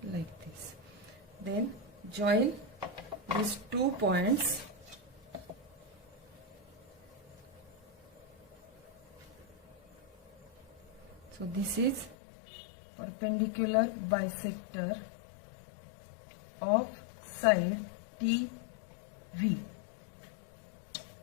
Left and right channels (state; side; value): drops out; right; at 12.2 s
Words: like this. Then join these 2 points. So this is perpendicular bisector of side TV.